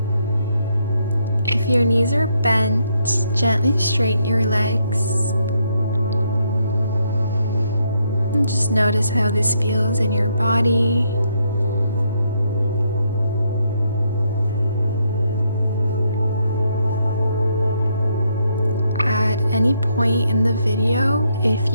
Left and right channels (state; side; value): inverted; both; correlation -0.75